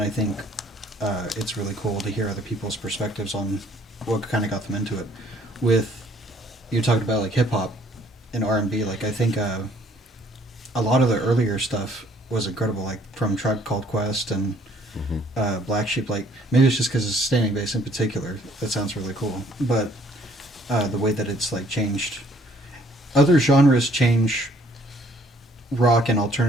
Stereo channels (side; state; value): both; normal; correlation 0.61